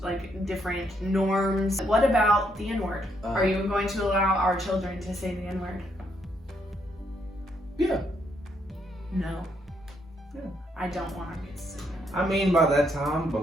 like different norms. What about the N-word? Are you going to allow our children to say the N-word? Yeah. No. Yeah. I don't want our kids to say that. I mean, by that time, but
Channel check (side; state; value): both; normal; correlation 0.74